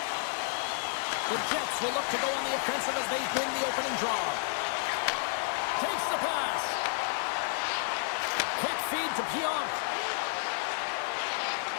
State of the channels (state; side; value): silent; right; digital silence